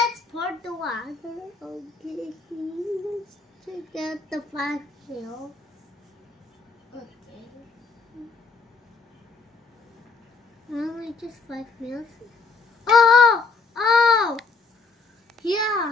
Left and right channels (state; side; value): quieter; right; 4.4 dB